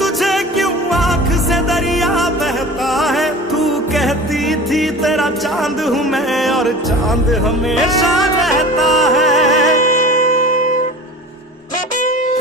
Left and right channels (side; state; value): both; normal; correlation 0.38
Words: क्यों आंख से दरिया बहता है। तू कहती थी तेरा चांद हूँ मैं और चांद हमेशा रहता है।